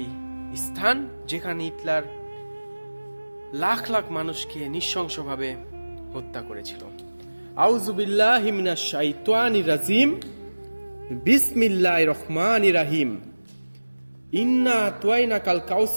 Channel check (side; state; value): both; inverted; correlation -1.00